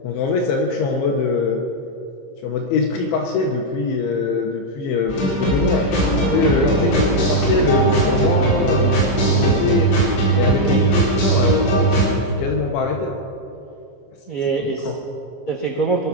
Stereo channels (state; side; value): late; right; 15 ms